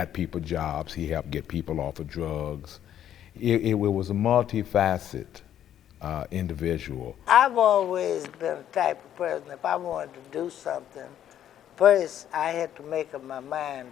people jobs. He helped get people off of drugs. It was a multifaceted individual. I've always been the type of person, if I wanted to do something, first I had to make up my mind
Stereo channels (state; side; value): quieter; right; 10.6 dB